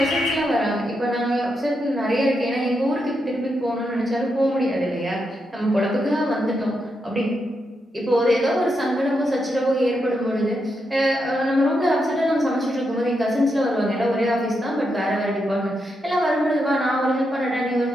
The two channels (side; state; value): both; normal; correlation 0.83